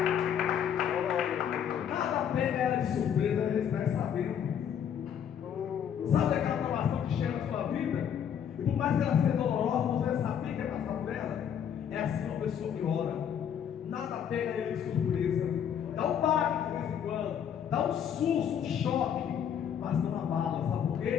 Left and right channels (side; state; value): right; quieter; 8.6 dB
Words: Nada pega ela de surpresa, ela está sabendo. Sabe aquela provação que chega na sua vida? E por mais que ela seja dolorosa, você vai saber que vai passar por ela. É assim uma pessoa que ora. Nada pega ele de surpresa. Dá um baque de vez em quando, dá um susto, um choque, mas não abala. Sabe por